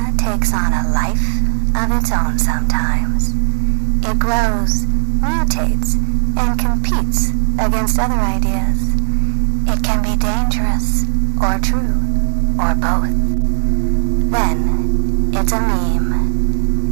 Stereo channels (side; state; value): left; silent; digital silence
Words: takes on a life of its own sometimes. It grows, mutates, and competes against other ideas. It can be dangerous, or true, or both. Then, it's a meme.